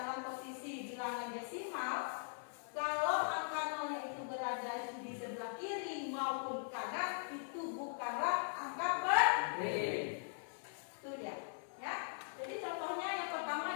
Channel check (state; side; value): silent; right; 51 dB below the other